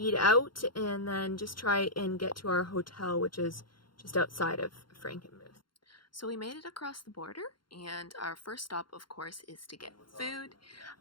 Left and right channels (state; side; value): late; right; 0.72 ms